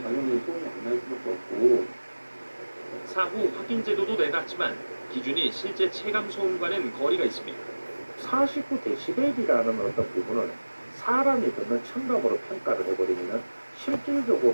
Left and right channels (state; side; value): inverted; both; correlation -1.00